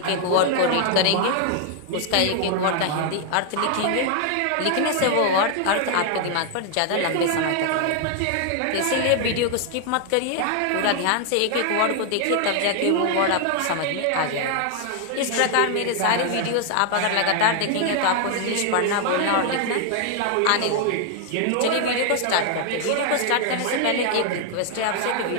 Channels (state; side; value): different; both; correlation 0.00